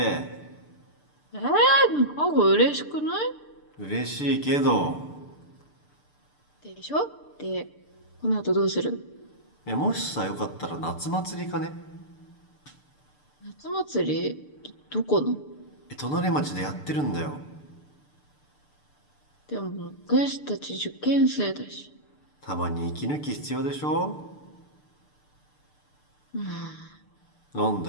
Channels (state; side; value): late; right; 6.8 ms